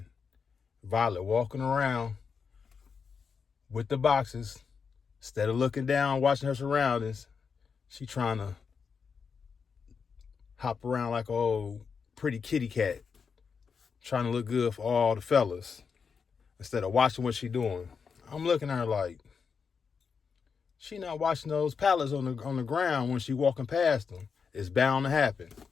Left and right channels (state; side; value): quieter; right; 5.9 dB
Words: Violet walking around with the boxes, instead of looking down, watching her surroundings, she trying to hop around like an old pretty kitty cat, trying to look good for all the fellas, instead of watching what she doing. I'm looking at her like, she not watching those pallets on the ground when she walking past them. It's bound to happen.